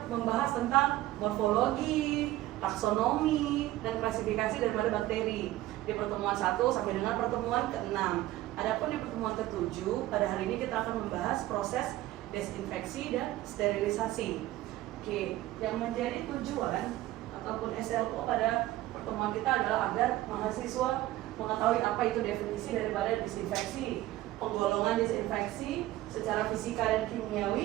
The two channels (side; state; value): left; quieter; 15.9 dB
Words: membahas tentang morfologi, taksonomi, dan klasifikasi daripada bakteri di pertemuan 1 sampai dengan pertemuan ke-6. Adapun di pertemuan ke-7, pada hari ini kita akan membahas proses desinfeksi dan sterilisasi. Oke, yang menjadi tujuan ataupun SLO pada pertemuan kita adalah agar mahasiswa mengetahui apa itu definisi daripada disinfeksi, penggolongan disinfeksi secara fisika dan